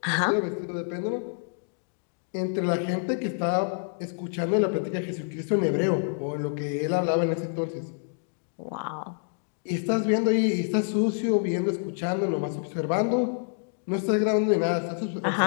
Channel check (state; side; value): silent; right; digital silence